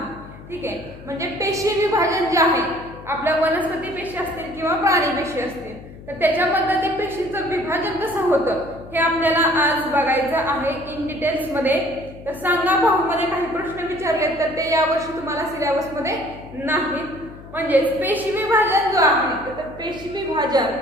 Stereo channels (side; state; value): left; noise; hum, 17 dB below the sound